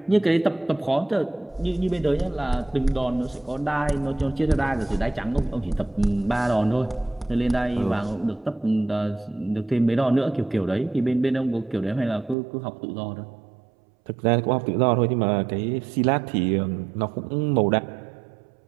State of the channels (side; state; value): left; drops out; at 12.4 s